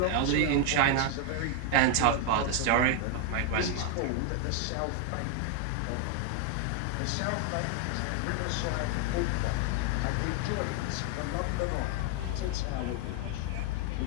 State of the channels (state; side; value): different; both; correlation 0.00